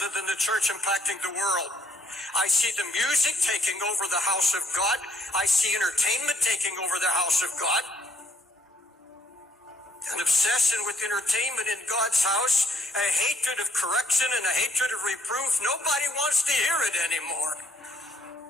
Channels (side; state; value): both; normal; correlation 0.70